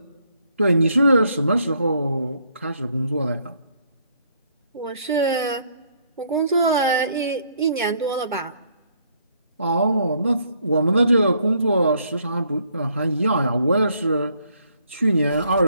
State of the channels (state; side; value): inverted; both; correlation -0.68